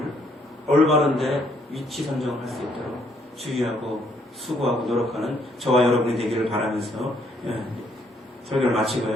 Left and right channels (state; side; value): normal; both; correlation 0.68